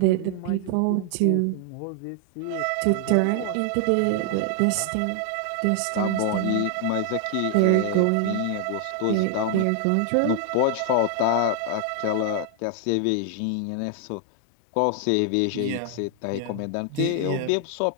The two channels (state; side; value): different; both; correlation 0.00